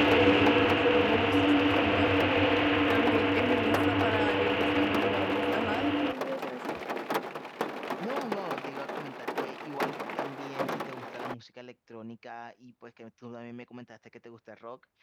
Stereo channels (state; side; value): identical; both; correlation 1.00